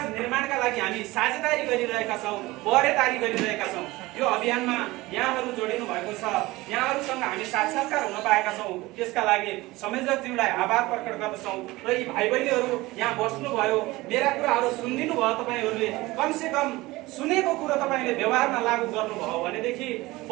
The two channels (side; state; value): left; quieter; 20.1 dB